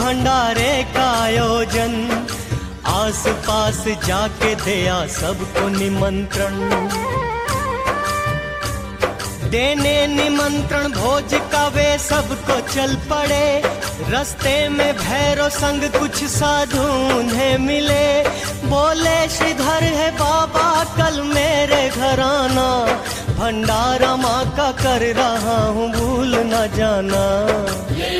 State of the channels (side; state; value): both; identical; correlation 1.00